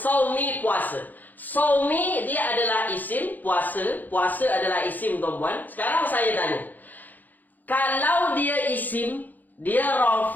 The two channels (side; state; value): right; late; 0.084 ms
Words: puasa. Saumi dia adalah isim, puasa. Puasa adalah isim, tuan-puan. Sekarang saya tanya. Kalau dia isim, dia